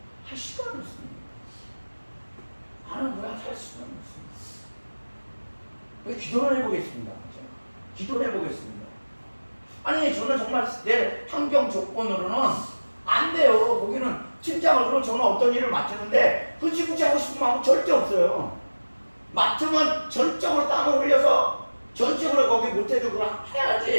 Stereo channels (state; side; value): inverted; both; correlation -1.00